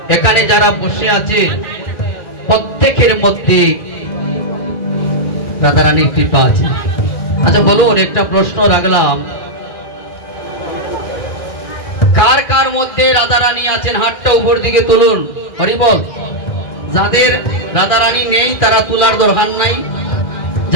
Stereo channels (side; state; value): right; late; 2.4 ms